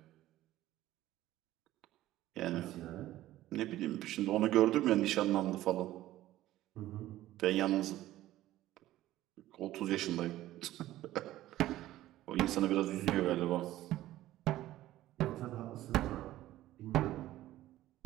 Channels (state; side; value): quieter; left; 14.9 dB